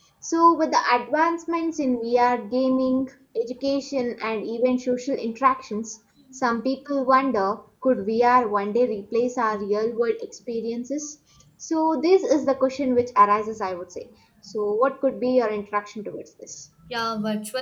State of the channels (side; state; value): both; identical; correlation 1.00